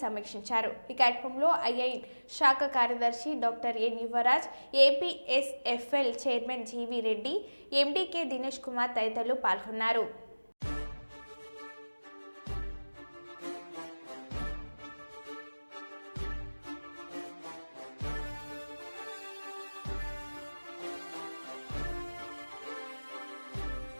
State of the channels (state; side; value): inverted; both; correlation -1.00